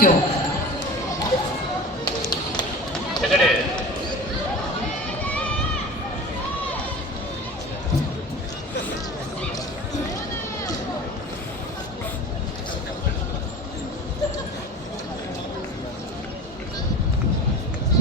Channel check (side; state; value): both; normal; correlation 0.36